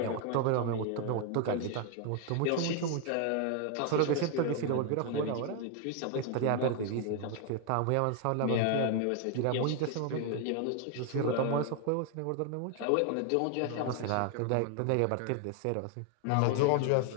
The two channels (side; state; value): both; different; correlation 0.00